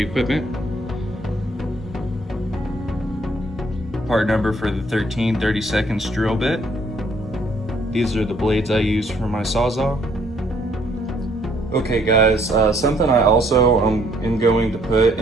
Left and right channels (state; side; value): normal; both; correlation 0.65